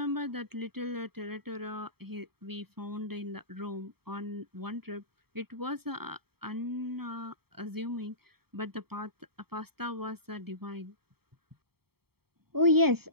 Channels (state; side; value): late; left; 0.95 ms